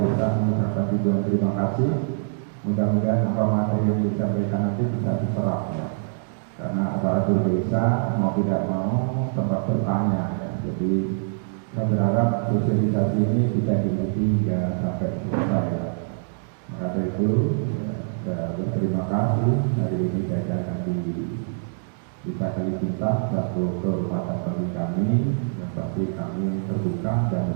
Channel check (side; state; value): left; silent; digital silence